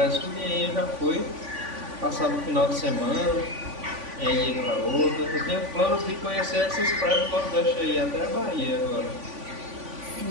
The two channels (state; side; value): late; left; 3.5 ms